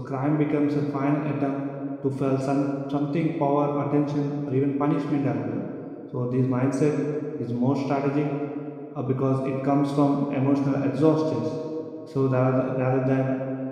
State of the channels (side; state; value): both; identical; correlation 1.00